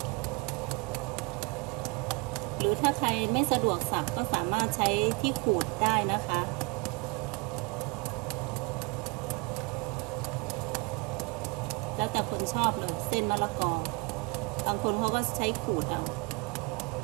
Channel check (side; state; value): left; quieter; 28.8 dB